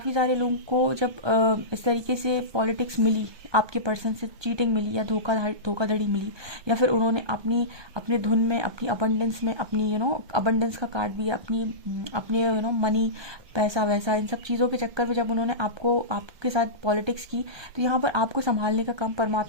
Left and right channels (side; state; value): left; late; 1.2 ms